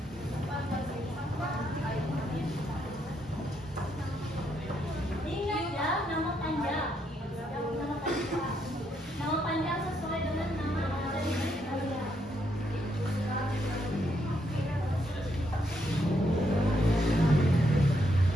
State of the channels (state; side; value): normal; both; correlation 0.76